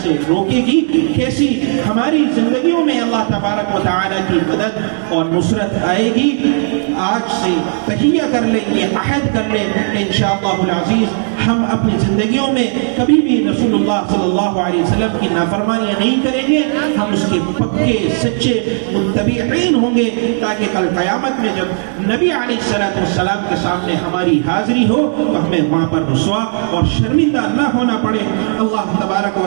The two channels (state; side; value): silent; left; 63 dB below the other